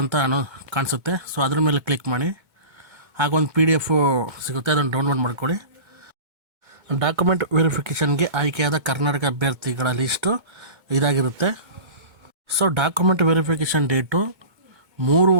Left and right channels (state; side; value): late; left; 2.2 ms